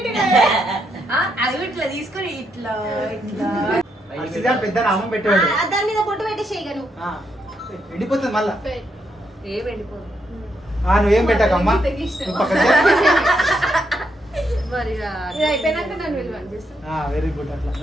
అది ఇట్లా తీసుకొని ఇట్లా ఇట్లా పెద్ద నామం పెట్టాడు దాని మీద బొట్టు పెట్టేసేయగను. ఎండిపోతుంది మళ్ళా ఏ వెళ్ళిపోదు నువ్వేం పెట్టకమ్మా నువ్వు పక్కన మరి ఇది అయిపోయినాక నన్ను విలువ చేస్తా. వెరీ గుడ్ అట్లా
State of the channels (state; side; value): normal; both; correlation 0.79